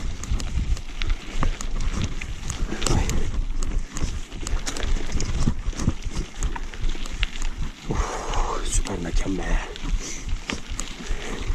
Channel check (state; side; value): identical; both; correlation 1.00